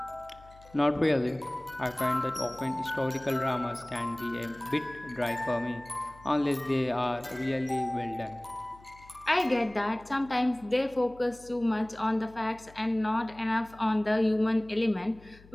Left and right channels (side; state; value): left; noise; hum, 23 dB below the sound